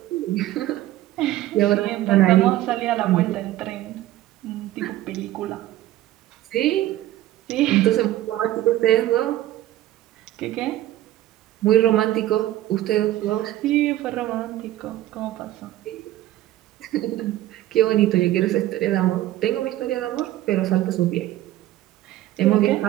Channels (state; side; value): quieter; left; 14.7 dB